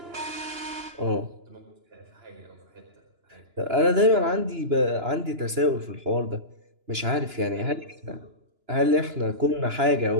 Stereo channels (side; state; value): left; late; 2.9 ms